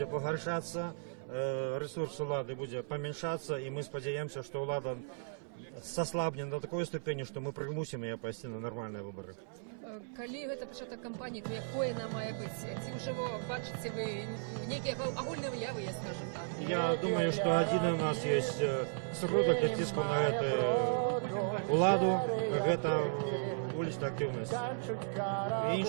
погоршаться, ресурс улады будет поменьшаться, и мы сподеемся, что улада сослабнет до такой ступени, что мы примусим ее пойти на нормальные выборы. Калі гэта пачатак кампаніі, то якое она мае быць? Ці ўжо бачыце вы некія агульныя выявы, я скажем так? Я думаю, что один у нас есть сродак для ціску на эту уладу, это уличная активность. И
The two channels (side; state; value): left; silent; 54 dB below the other